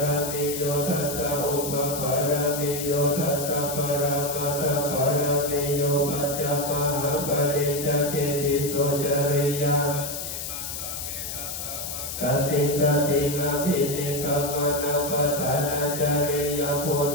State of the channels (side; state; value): left; noise; hiss, 6 dB below the sound